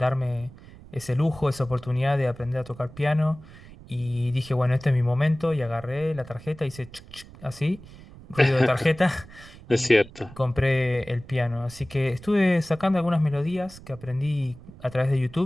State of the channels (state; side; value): noise; right; rumble, 19 dB below the sound